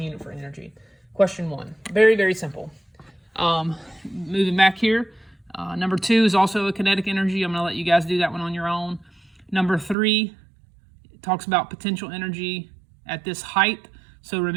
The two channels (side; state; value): left; drops out; at 10.0 s